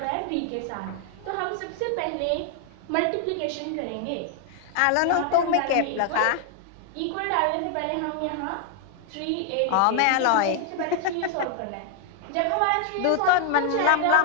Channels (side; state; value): both; different; correlation 0.00